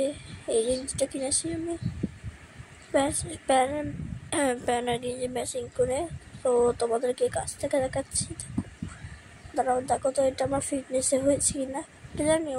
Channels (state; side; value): identical; both; correlation 1.00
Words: এই গেঞ্জিটা কিনেছি আমি প্যান্ট আর গেঞ্জি ম্যাচিং করে। তো তোমাদেরকে কাছ থেকে দেখাচ্ছি, দাঁড়াও দেখো তো এটা আমার ফিটনেসে হয়েছে কিনা, এটা জানি